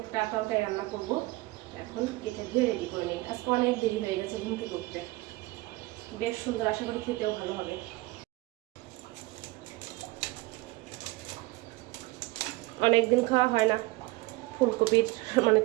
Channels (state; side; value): quieter; left; 21.4 dB